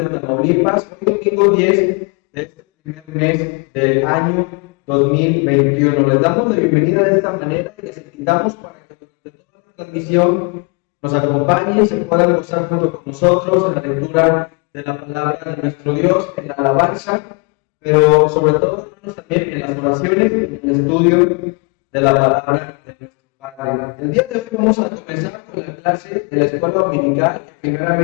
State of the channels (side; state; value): right; quieter; 34.1 dB